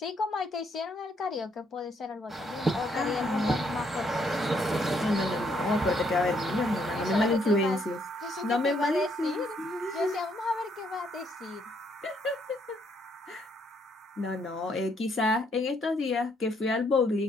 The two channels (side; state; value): both; normal; correlation 0.71